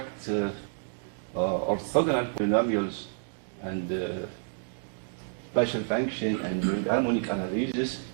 orthogonal polynomials and special function and doing harmonic analysis.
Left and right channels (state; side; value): silent; left; digital silence